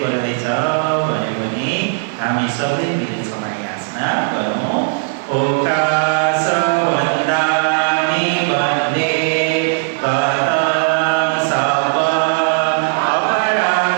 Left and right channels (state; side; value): silent; left; digital silence